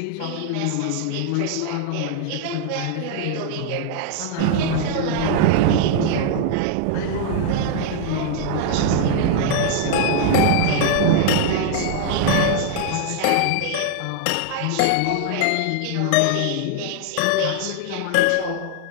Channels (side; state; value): both; different; correlation 0.00